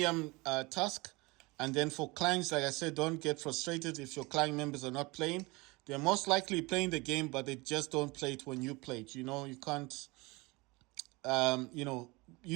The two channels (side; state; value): left; quieter; 24.3 dB